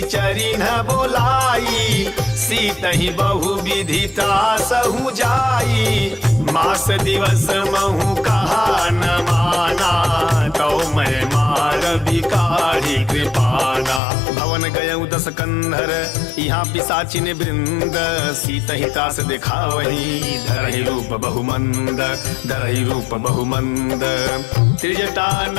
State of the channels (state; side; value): drops out; right; at 14.0 s